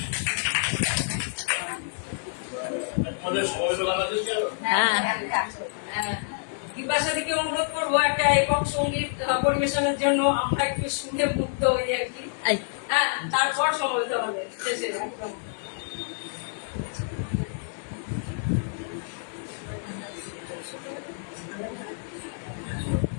বিপাশা থেকে অনুরোধ করবো একটা একক সঙ্গীত পরিবেশনের জন্য, আমরা একটু শুনে মুক্ত হই আর কি। হ্যাঁ, তারপর সমবেত হবে শেষে একদম।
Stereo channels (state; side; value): silent; right; digital silence